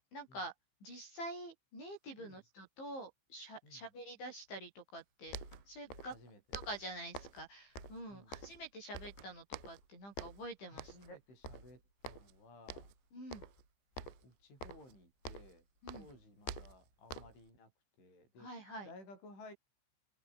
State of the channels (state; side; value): late; right; 15 ms